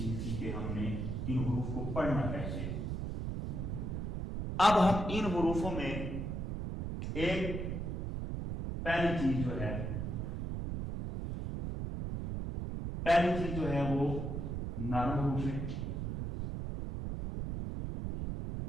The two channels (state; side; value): noise; right; rumble, 3 dB below the sound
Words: کی کہ ہم نے ان حروف کو پڑھنا کیسے۔ اب ہم ان حروفوں میں ایک پہلی چیز جو ہے وہ نرم حروف ہے۔